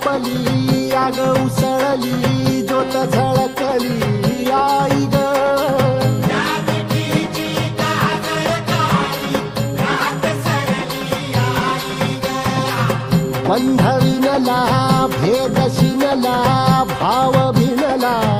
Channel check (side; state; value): both; identical; correlation 1.00